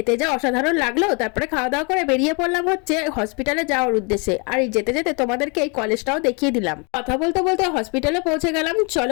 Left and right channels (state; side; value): quieter; right; 33.0 dB